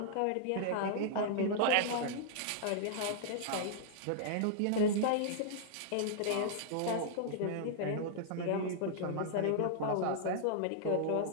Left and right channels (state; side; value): different; both; correlation -0.01